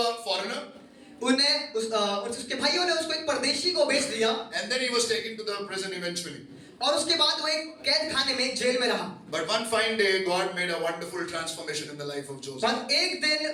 a foreigner. उसके भाइयों ने उसको एक परदेशी को बेच दिया And then he was taken to the prison eventually. और उसके बाद वो एक कैद खाने में जेल में रहा। But one fine day, God made a wonderful transformation in the life of Joseph. पर एक दिन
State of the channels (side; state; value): both; identical; correlation 1.00